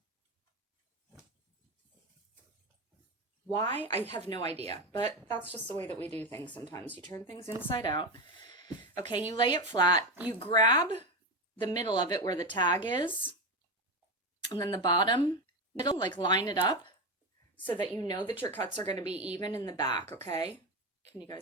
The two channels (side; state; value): both; normal; correlation 0.16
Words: Why? I have no idea, but that's just the way that we do things sometimes. You turn things inside out. Okay, you lay it flat. You grab the middle of it where the tag is, and then the bottom middle, like line it up so that you know that your cuts are going to be even in the back, okay? Can you